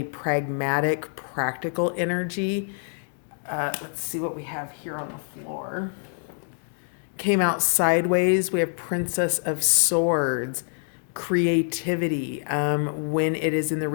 pragmatic, practical energy. Let's see what we have here on the floor. Came out sideways. We have Princess of Swords, creativity. When it is in the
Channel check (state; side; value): silent; right; 61 dB below the other